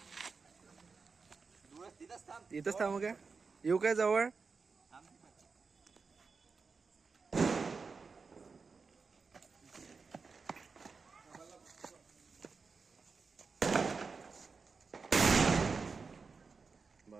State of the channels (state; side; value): quieter; left; 4.8 dB